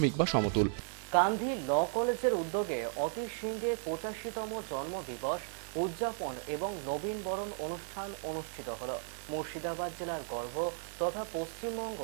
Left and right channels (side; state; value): left; silent; digital silence